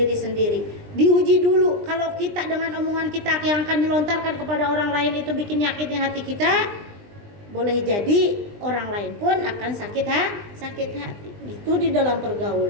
sendiri. Diuji dulu. Kalau kita dengan omongan kita yang akan dilontarkan kepada orang lain itu bikin nyakitin hati kita, boleh jadi orang lain pun akan sakit hati. Itu di dalam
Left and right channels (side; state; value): left; late; 20 ms